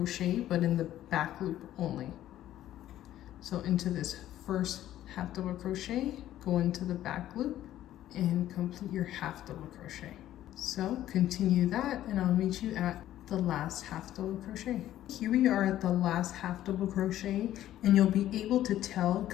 but in the back loop only. So into this first half double crochet, go into the back loop and complete your half double crochet. So continue that, and I'll meet you at the last half double crochet. Here we are at the last half double crochet, and you'll be able to tell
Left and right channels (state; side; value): quieter; right; 12.9 dB